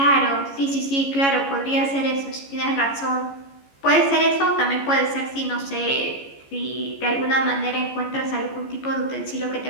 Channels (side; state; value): right; late; 14 ms